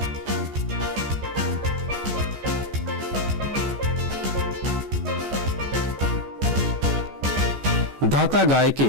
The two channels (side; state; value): left; late; 14 ms